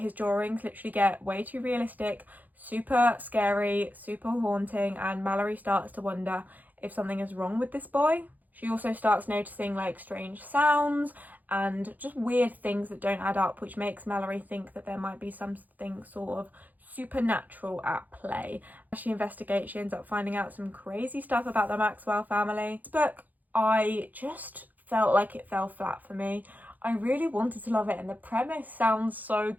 drawings literally get way too realistic, super scary, super haunting, and Mallory starts to wonder if something is wrong with this boy. She also starts noticing like strange sounds and just weird things that don't add up, which makes Mallory think that there might be something sort of supernatural at play. As she investigates, she ends up finding out some crazy stuff about the Maxwell family. This book, I just felt like it fell flat for me. I really wanted to love it and the premise sounds so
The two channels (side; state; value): left; late; 0.082 ms